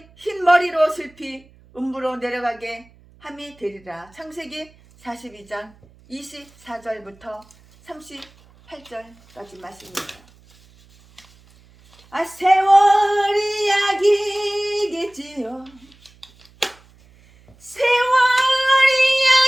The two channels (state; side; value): noise; right; hum, 28 dB below the sound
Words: 흰 머리로 슬피 음부로 내려가게 함이 되리라. 창세기 42장 24절부터 38절까지 말씀입니다. 세월이 약이겠지요. 세월이